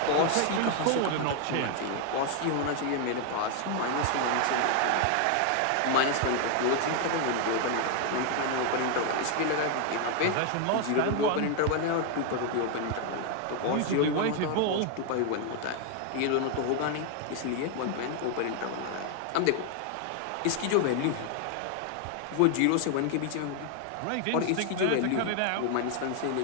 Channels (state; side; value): different; both; correlation 0.00